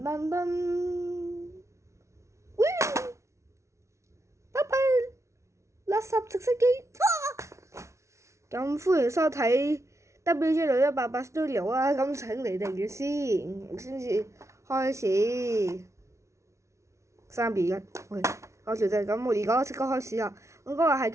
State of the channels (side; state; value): left; late; 0.14 ms